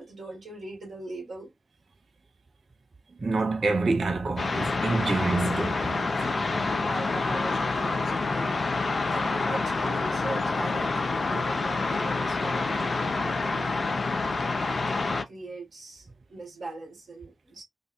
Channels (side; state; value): both; normal; correlation 0.91